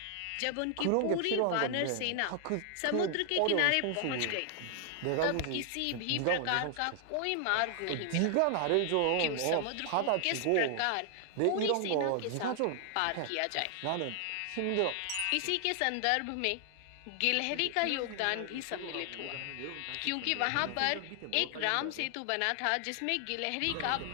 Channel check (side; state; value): both; different; correlation 0.00